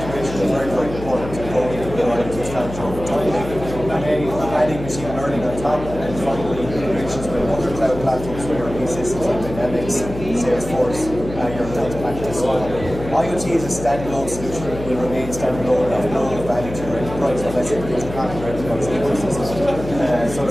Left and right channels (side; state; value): left; noise; hum, 10 dB below the sound